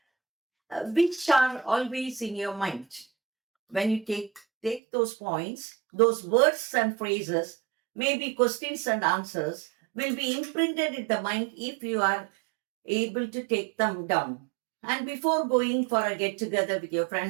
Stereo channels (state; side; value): drops out; left; at 4.8 s